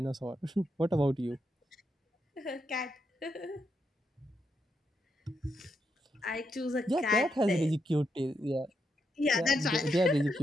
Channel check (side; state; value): both; normal; correlation 0.81